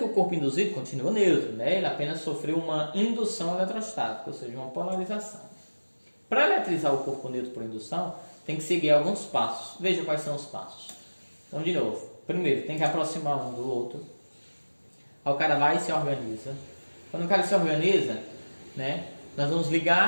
o corpo induzido continua neutro, né? Ele apenas sofreu uma indução eletrostática, ou seja, uma polarização. Para eletrizar o corpo neutro por indução, tem que seguir alguns passos. Veja quais são os passos. Então, de novo, primeiro, tem que aproximar um do outro. Aí o cara vai e se organiza. Quando o cara se organiza, né, nós vamos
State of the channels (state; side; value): inverted; both; correlation -1.00